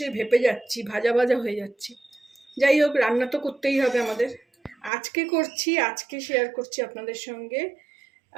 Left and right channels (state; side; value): drops out; left; at 4.9 s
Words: ভেপে যাচ্ছি, ভাজা ভাজা হয়ে যাচ্ছি। যাই হোক, রান্না তো করতেই হবে আমাদের। আজকে শেয়ার করছি আপনাদের সঙ্গে